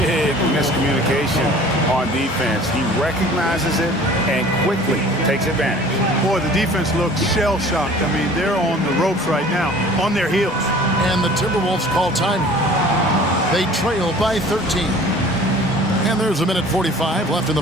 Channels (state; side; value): normal; both; correlation 0.48